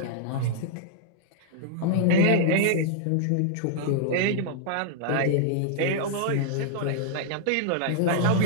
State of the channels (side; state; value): both; different; correlation -0.01